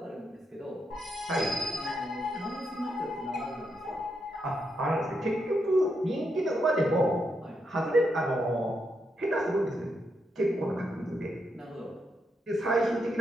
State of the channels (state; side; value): normal; both; correlation 0.81